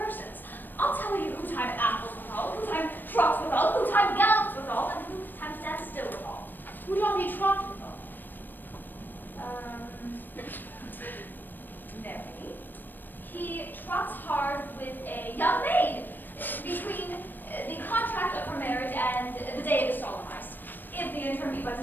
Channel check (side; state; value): right; late; 0.092 ms